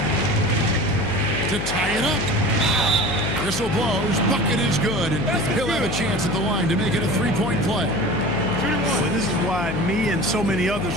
to tie it up. Whistle blows. Bucket is good, and he'll have a chance at the line to make it a 3-point play. Well, this is why me and so many others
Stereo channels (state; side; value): noise; left; hum, 5 dB below the sound